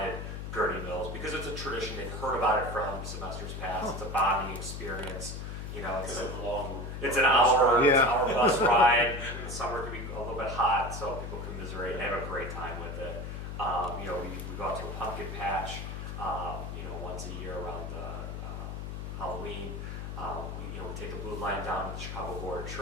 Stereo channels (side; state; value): left; noise; hum, 6 dB below the sound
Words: Gurney Mills because it's a tradition. They've heard about it from semesters past. It's a bonding experience. You know, it's an hour, Yeah. hour bus ride. In the summer it can be a little bit hot, so people commiserate and have a great time with it. You know, we go out to a pumpkin patch, you know, once a year around Halloween. We take the blue line down to the Chicago Board of